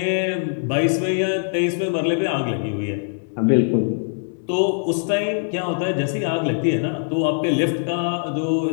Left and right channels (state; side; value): silent; right; digital silence